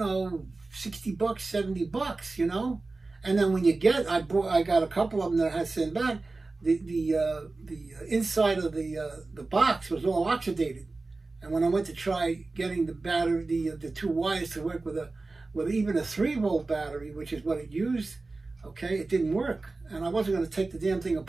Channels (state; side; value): quieter; left; 3.5 dB